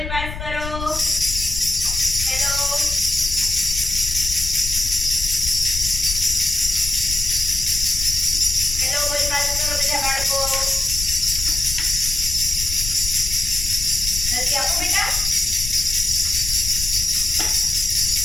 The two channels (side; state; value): left; noise; rumble, 7 dB below the sound